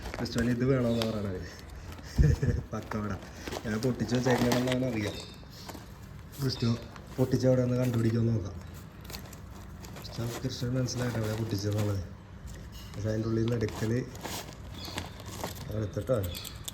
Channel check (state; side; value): identical; both; correlation 1.00